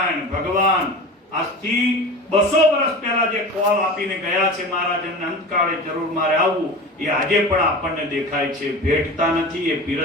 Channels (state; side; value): normal; both; correlation 0.33